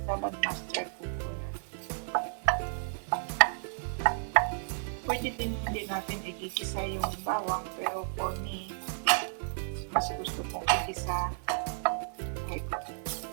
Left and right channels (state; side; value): silent; left; digital silence